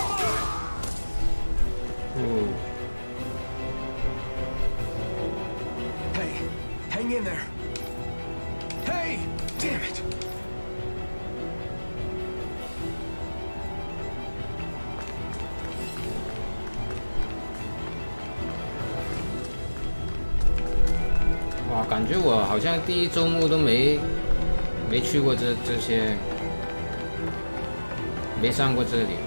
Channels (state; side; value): inverted; both; correlation -1.00